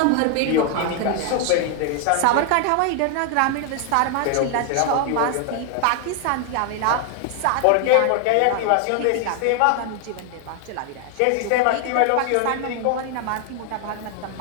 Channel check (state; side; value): different; both; correlation 0.00